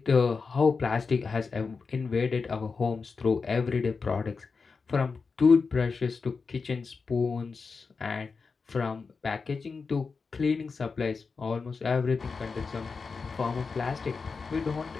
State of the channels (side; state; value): right; quieter; 4.8 dB